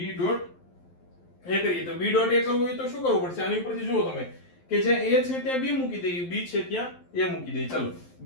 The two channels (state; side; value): late; right; 11 ms